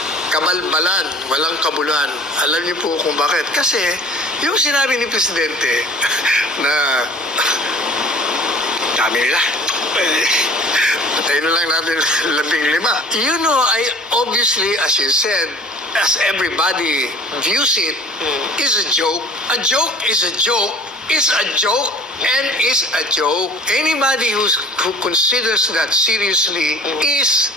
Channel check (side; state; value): both; normal; correlation 0.46